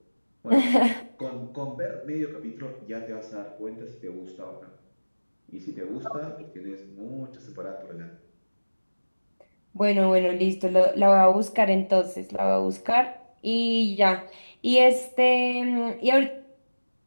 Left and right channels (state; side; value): inverted; both; correlation -1.00